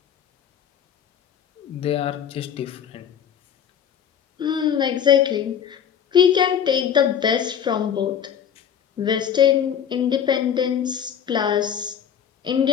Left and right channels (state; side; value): quieter; right; 8.6 dB